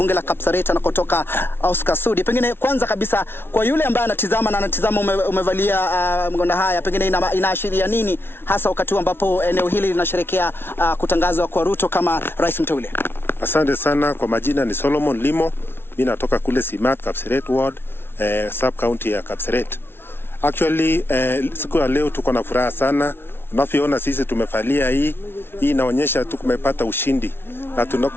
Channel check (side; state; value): right; late; 0.11 ms